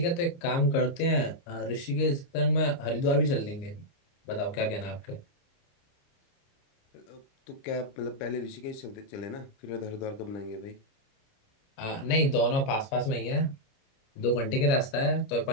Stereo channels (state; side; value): late; right; 29 ms